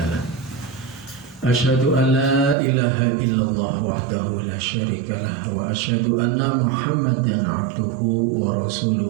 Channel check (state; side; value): drops out; left; at 2.6 s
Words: lahu. Asyhadu an la ilaha illallah wahdahu la syarika lah wa asyhadu anna Muhammadan abduhu wa